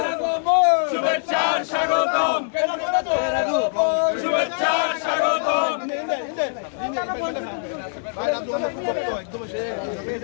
শুভেচ্ছা স্বাগতম, শুভেচ্ছা স্বাগতম,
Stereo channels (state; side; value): silent; right; digital silence